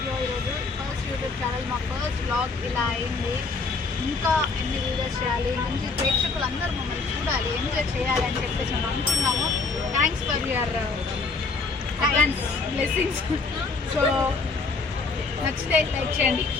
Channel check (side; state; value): right; quieter; 4.1 dB